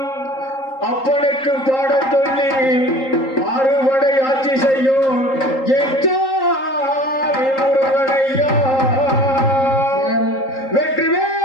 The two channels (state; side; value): late; right; 3.8 ms